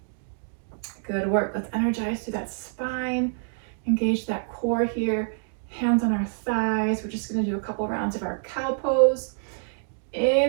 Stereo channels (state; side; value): silent; left; digital silence